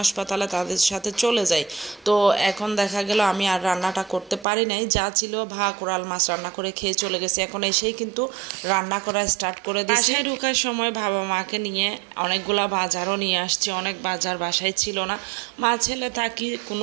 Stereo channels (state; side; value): drops out; left; at 4.5 s